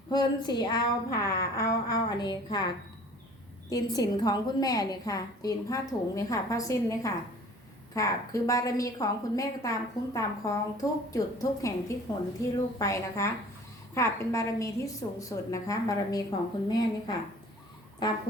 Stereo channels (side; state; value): both; normal; correlation 0.49